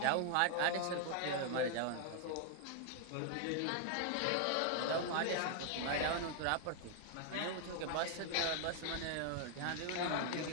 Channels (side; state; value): both; different; correlation 0.00